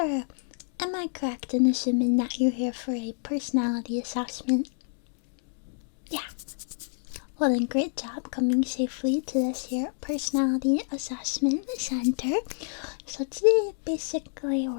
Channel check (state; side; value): silent; right; digital silence